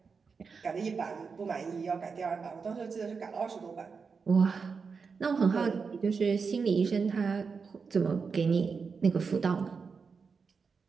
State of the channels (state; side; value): quieter; left; 5.3 dB